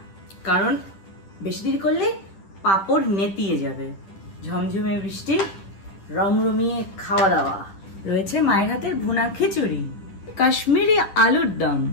কারণ বেশি দেরি করলে পাঁপড় নেতিয়ে যাবে। ঝমঝমে বৃষ্টি, রমরমিয়ে খাওয়া দাওয়া। রয়েছে মায়ের হাতের ভুনা খিচুড়ি, কাশ্মীরি আলুর দম,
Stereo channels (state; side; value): late; right; 10 ms